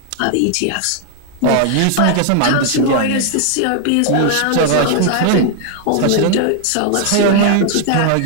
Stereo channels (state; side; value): different; both; correlation 0.00